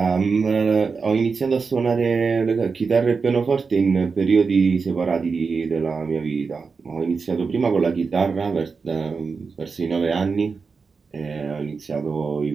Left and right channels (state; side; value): quieter; left; 4.9 dB